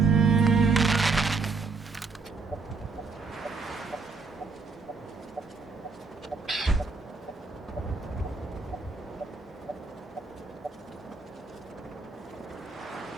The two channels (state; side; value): quieter; left; 4.4 dB